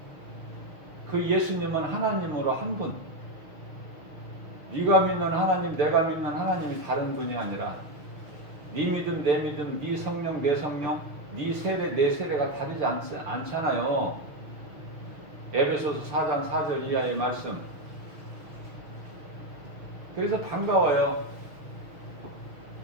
그 예수님은 하나님으로 한 분. 네가 믿는 하나님, 내가 믿는 하나님이 다른 분이 아니라, 네 믿음, 내 믿음, 네 성령, 내 성령, 네 세례, 내 세례가 다르지 않잖아요. 에베소서 4장 4절 이하의 말씀. 그래서 반가워요.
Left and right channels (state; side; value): late; left; 6.4 ms